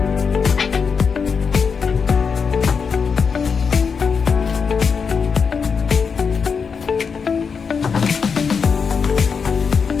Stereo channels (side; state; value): right; quieter; 5.8 dB